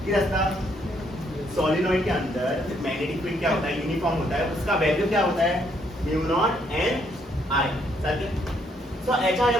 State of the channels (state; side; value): normal; both; correlation 0.71